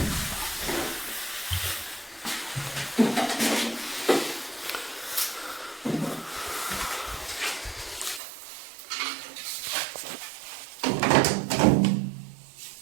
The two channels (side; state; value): left; drops out; at 8.2 s